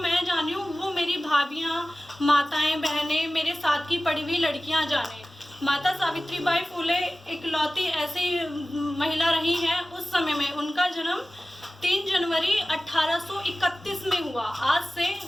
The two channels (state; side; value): normal; both; correlation 0.97